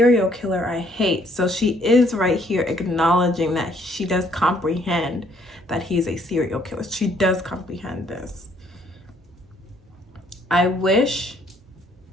killer I hate. So she is right here acknowledging that she does comprehend that he's a serial killer. She does comprehend this. I wish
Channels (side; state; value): both; normal; correlation 0.65